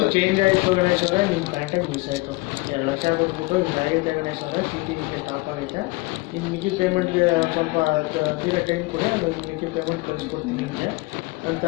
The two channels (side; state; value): right; quieter; 23.4 dB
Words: ಚೇಂಜ್ ಆಯಿತು ಗಣೇಶ್ ಅವರೇ. ನಿಮ್ಮ ಕಾಂಟ್ಯಾಕ್ಟ್ ಮಿಸ್ ಆಯಿತು. 2 ಲಕ್ಷ ಕೊಟ್ಬಿಟ್ಟು ಹಿಂಗಾಗೈತೆ ಗಣೇಶ್ ಅವರೇ, ಚೀಟಿ ಹಿಂಗೆ ಸ್ಟಾಪ್ ಆಗೈತೆ. ಇನ್ನು ಮಿಕ್ಕಿ ಪೇಮೆಂಟ್ಗೆ ಸ್ವಲ್ಪ ತೀರ ಟೈಮ್ ಕೊಡಿ, ಅದು ಮಿಕ್ಕಿ ಪೇಮೆಂಟ್ ಕಳಿಸ್ಕೊಡ್ತೀನಿ ನಿಮಗೆ ಅಂತ